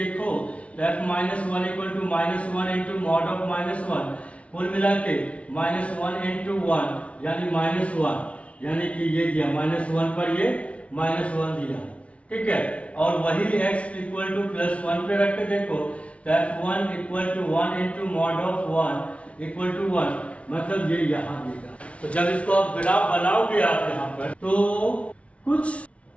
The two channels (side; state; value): right; late; 0.063 ms